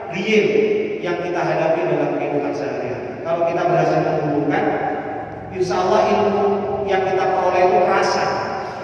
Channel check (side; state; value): both; identical; correlation 1.00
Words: real yang kita hadapi dalam kehidupan sehari-hari. Kalau kita berhasil menghubungkan, insya Allah ilmu yang kita peroleh itu